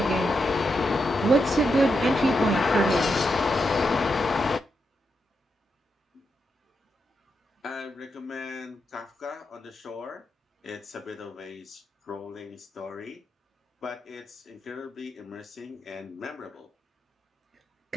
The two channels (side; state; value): both; normal; correlation 0.84